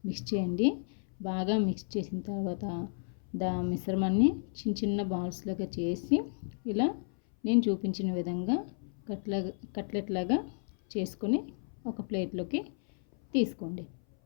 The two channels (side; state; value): right; silent; 56 dB below the other